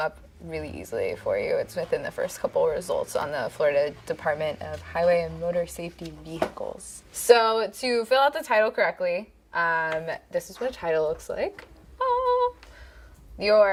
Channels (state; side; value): identical; both; correlation 1.00